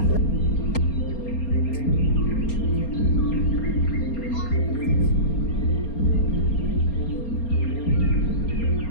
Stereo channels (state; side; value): late; right; 4.3 ms